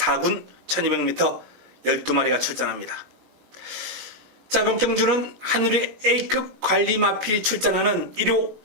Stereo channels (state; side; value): late; left; 21 ms